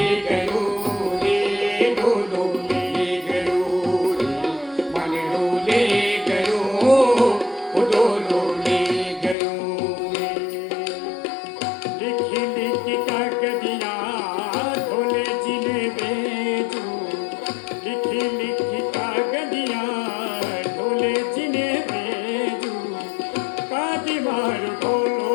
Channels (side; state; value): right; drops out; at 9.3 s